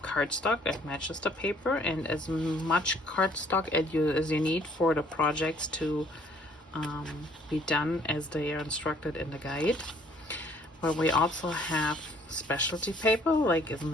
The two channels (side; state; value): both; normal; correlation 0.60